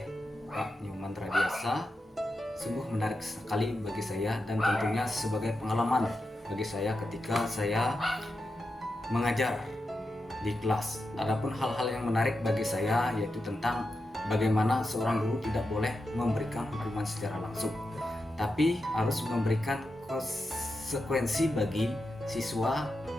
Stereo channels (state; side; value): normal; both; correlation 0.89